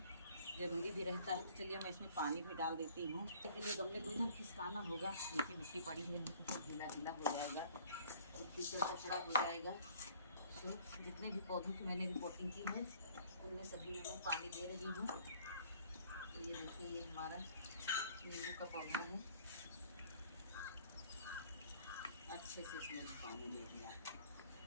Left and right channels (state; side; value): inverted; both; correlation -0.55